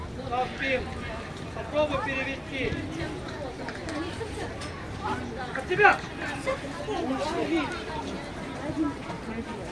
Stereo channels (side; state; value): both; identical; correlation 1.00